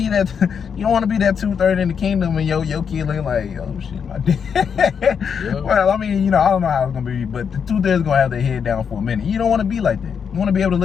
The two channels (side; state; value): right; quieter; 6.9 dB